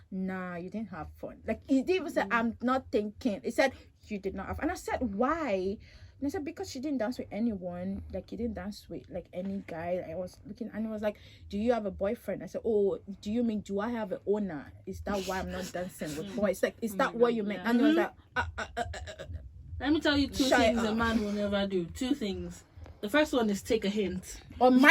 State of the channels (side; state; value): both; identical; correlation 1.00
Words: nah, you didn't have fun. Like, he didn't even say, I'm not thinking. He said, you did not have. And I said, why? And I said, because she didn't dance with anyone. Like, you didn't dance with, like, any guy. I was looking, and he was like, do you have a boyfriend? I said, oh, do you mean, do I have an owner? Is that why I'm not dancing with boys? Like, is that what you meant? And he was like, Let me tell you two things a man will never do. Two things. The first one is take a hint. or